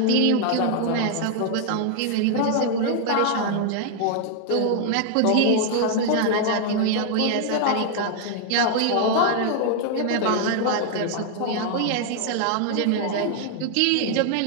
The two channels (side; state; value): both; different; correlation 0.00